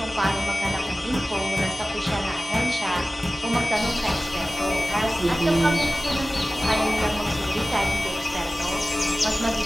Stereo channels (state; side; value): normal; both; correlation 0.97